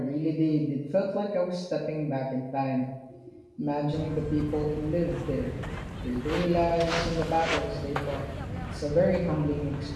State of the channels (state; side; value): identical; both; correlation 1.00